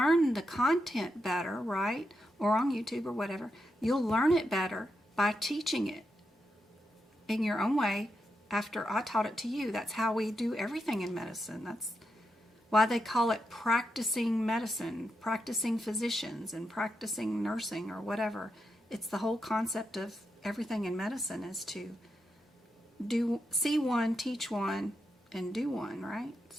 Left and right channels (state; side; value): normal; both; correlation 0.85